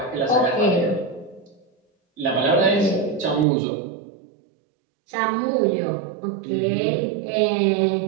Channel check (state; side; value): drops out; left; at 3.5 s